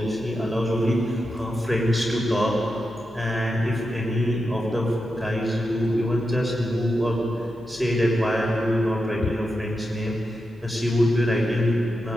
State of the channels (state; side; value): noise; left; hum, 25 dB below the sound